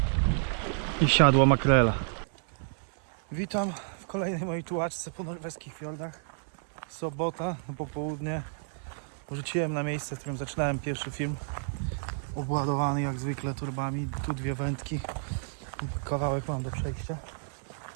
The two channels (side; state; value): left; silent; 58 dB below the other